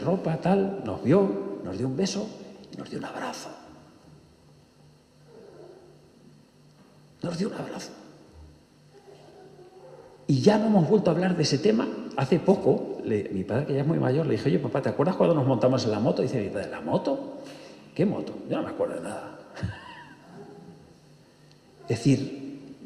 tal, nos vio, nos dio un beso y nos dio un abrazo. Y ya no hemos vuelto a hablar de ese tema. Hace poco, mi padre, que ya es muy mayor, le dije, oye, papá, ¿te acuerdas cuando nos montamos en la moto? Dice mi padre, ¿la moto? ¿Qué moto? Yo no me acuerdo de nada. Es decir,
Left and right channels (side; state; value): both; identical; correlation 1.00